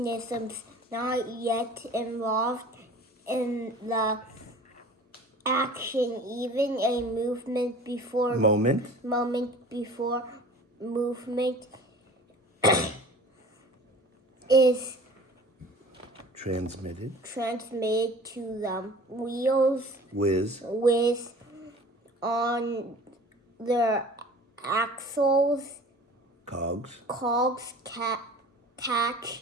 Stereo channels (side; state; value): both; normal; correlation 0.43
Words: not yet involved in the action. Even a moment before movement is transmitted to the wheels whiz on their axles. Cogs